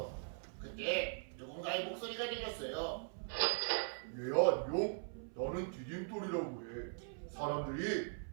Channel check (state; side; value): silent; left; 51 dB below the other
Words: 그때 누군가의 목소리가 들렸어요. 얘야 안녕. 나는 디딤돌이라고 해. 사람들이